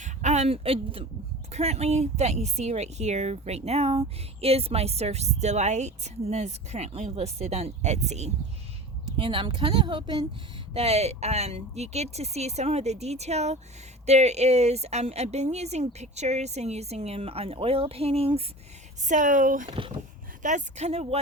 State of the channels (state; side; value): normal; both; correlation 0.35